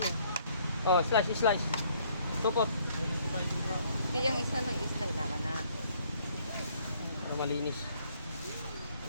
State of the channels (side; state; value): both; inverted; correlation -0.63